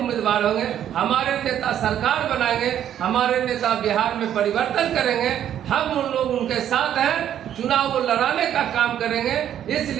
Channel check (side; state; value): left; quieter; 10.4 dB